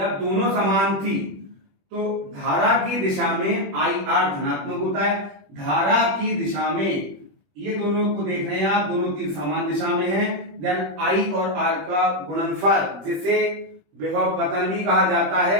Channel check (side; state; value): left; late; 21 ms